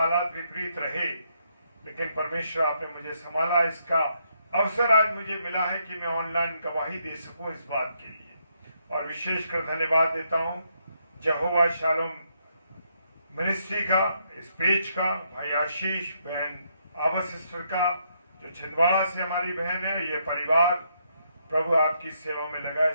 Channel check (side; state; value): both; inverted; correlation -0.75